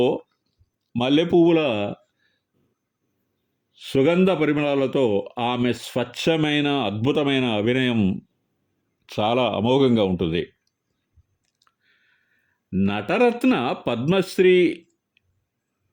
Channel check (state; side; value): identical; both; correlation 1.00